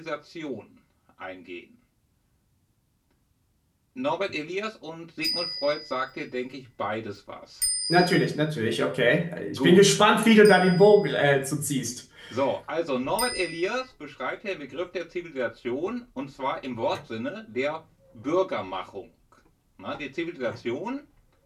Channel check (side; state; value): both; identical; correlation 1.00